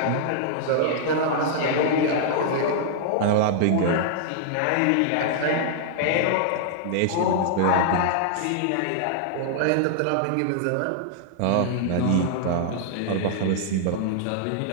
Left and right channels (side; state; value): both; different; correlation -0.01